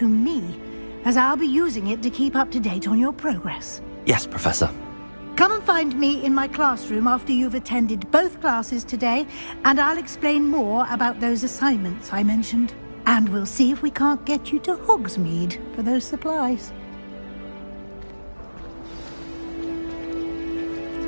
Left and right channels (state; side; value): inverted; both; correlation -1.00